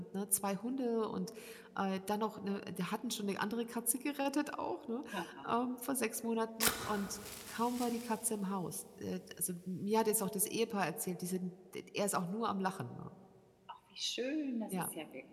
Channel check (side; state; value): both; identical; correlation 1.00